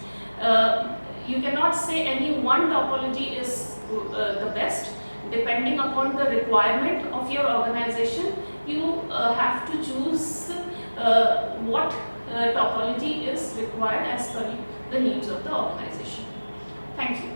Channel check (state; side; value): inverted; both; correlation -1.00